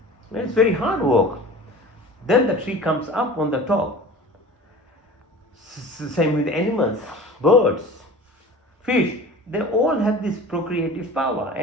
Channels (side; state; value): both; normal; correlation 0.39